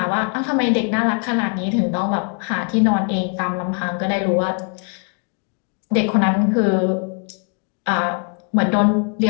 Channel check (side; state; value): right; quieter; 39.2 dB